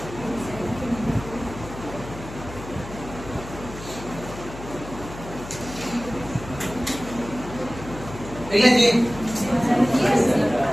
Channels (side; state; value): left; noise; hum, 13 dB below the sound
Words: ठीक है जी,